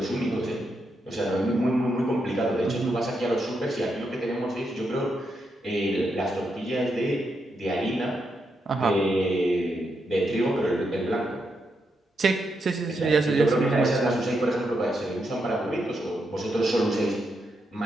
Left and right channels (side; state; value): both; normal; correlation 0.82